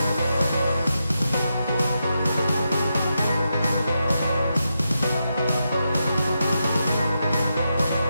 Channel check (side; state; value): both; inverted; correlation -0.86